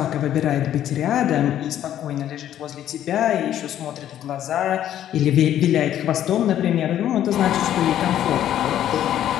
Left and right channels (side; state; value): right; quieter; 11.3 dB